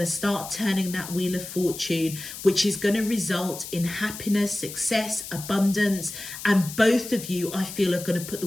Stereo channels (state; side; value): noise; left; hiss, 11 dB below the sound